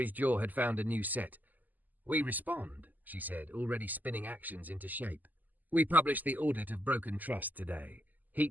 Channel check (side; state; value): left; late; 0.083 ms